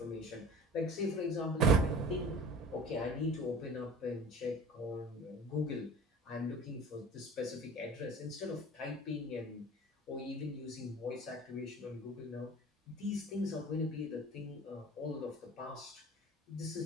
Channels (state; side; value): normal; both; correlation 0.41